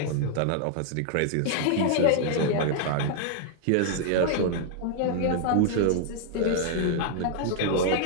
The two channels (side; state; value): both; different; correlation 0.00